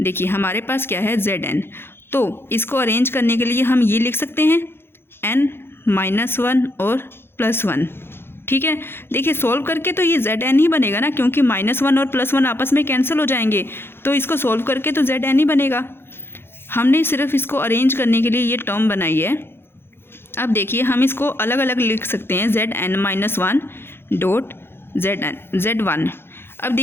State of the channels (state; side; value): late; right; 0.11 ms